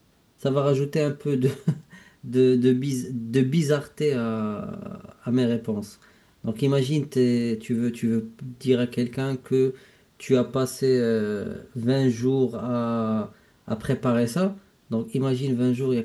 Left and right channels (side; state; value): both; identical; correlation 1.00